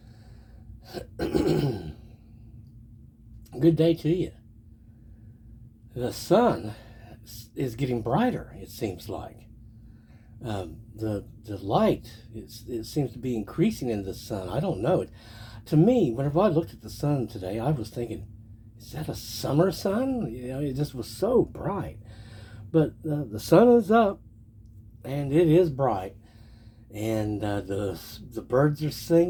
good day to you. The sun is getting brighter. It seems like the light it seems to be increasing in the sun. I don't know. To me, whenever I looked at the sun today, I was thinking, is that a summer sun? It just was so bright. But the sun is up and it is bright, and the birds are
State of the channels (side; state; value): both; identical; correlation 1.00